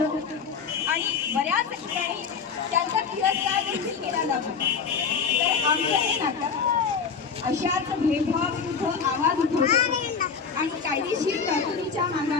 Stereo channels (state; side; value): quieter; right; 6.0 dB